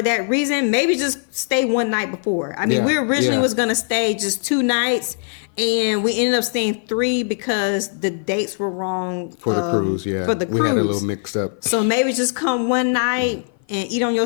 that reason, maybe just stay one night before. I mean, Yeah, we originally yeah. was gonna stay just 2 nights, and we ended up staying 3 because the dates were wrong For the cruise, yeah. For the cruise, We had a little mixed up. So maybe just come one night and eat on your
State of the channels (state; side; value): silent; right; 55 dB below the other